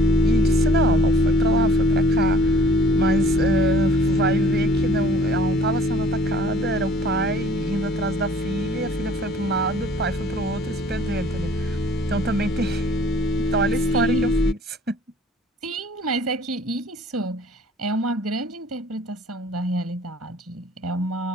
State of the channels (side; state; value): both; normal; correlation 0.54